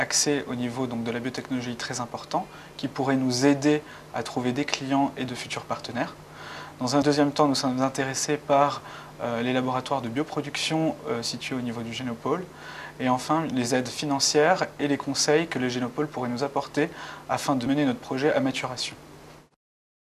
au niveau donc, de la biotechnologie très important qui pourrait nous aider à trouver des clients et de futurs partenaires. Dans un deuxième temps, nous sommes intéressés par les laboratoires de bioproduction situés au niveau du Génopôle. Et enfin, les aides financières et les conseils que le Génopôle pourrait nous apporter afin de mener notre projet à maturation.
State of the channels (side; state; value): both; identical; correlation 1.00